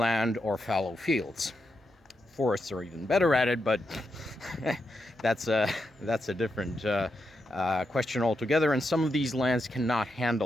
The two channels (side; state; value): both; normal; correlation 0.85